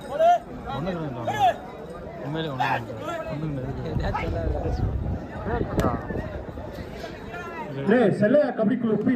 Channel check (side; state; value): both; identical; correlation 1.00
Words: செல்லையா கபடி குழு பி